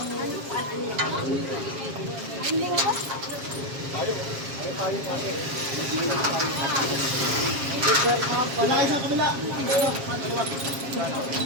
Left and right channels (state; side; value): late; left; 7.4 ms